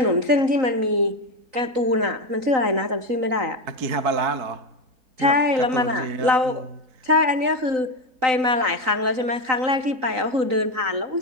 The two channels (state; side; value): late; left; 3.9 ms